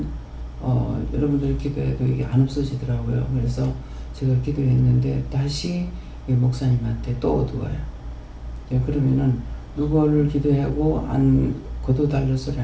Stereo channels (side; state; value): both; identical; correlation 1.00